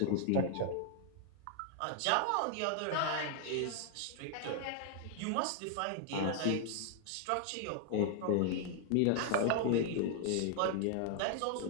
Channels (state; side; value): different; both; correlation 0.00